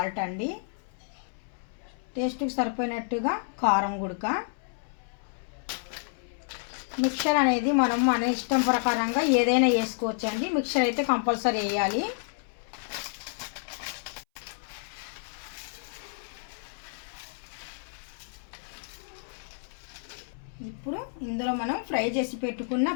అండి, టేస్ట్కి సరిపోయినట్టుగా కారం గుడక. మిక్చర్ అనేది మనం మన ఇష్టం ప్రకారంగా ఏదైనా వేసుకోవచ్చు అండి. మిక్చర్ అయితే కంపల్సరీ వేయాలి. ఇప్పుడు ఇందులో మనం ఫ్రై చేసి పెట్టుకున్న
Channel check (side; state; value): right; silent; 58 dB below the other